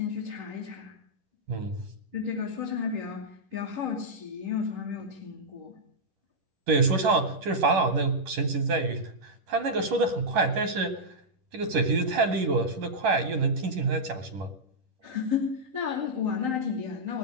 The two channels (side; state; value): left; late; 10 ms